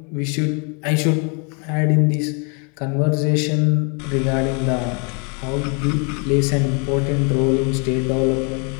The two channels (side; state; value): right; quieter; 35.8 dB